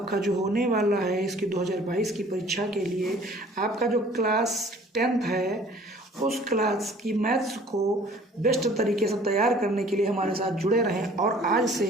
जो होने वाला है इसकी 2022 की परीक्षा के लिए, आपका जो क्लास 10th है उस क्लास की मैथ्स को बेस्ट तरीके से तैयार करने के लिए हमारे साथ जुड़े रहें। और आज से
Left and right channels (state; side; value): normal; both; correlation 0.52